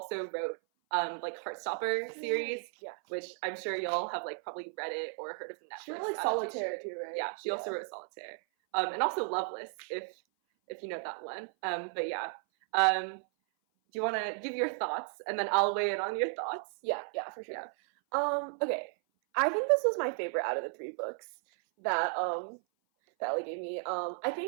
wrote like Heartstopper series, which I'm sure y'all have like probably read it or heard of the Netflix. She wrote like Solitaire too, right? Yeah, she also wrote Solitaire, and also Loveless, if you know that one. But yeah, do you want to give your thoughts, and then I'll weigh in on your thoughts? Yeah, for sure. Yeah. Okay, I think this was my favorite out of the 3 books that Ellie gave me. I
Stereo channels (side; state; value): left; silent; 55 dB below the other